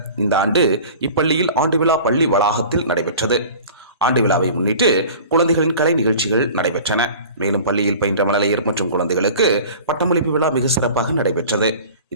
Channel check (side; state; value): both; inverted; correlation -0.41